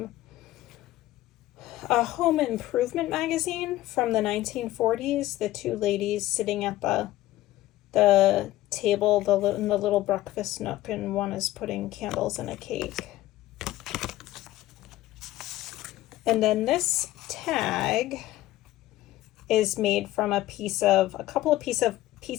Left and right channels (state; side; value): quieter; right; 15.6 dB